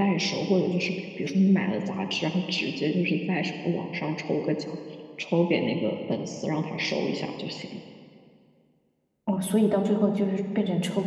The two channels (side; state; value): both; identical; correlation 1.00